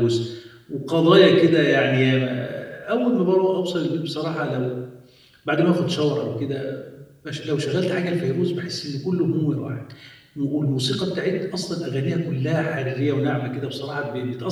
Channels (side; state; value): both; identical; correlation 1.00